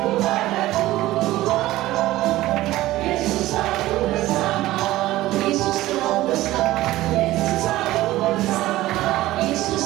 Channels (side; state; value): left; quieter; 16.5 dB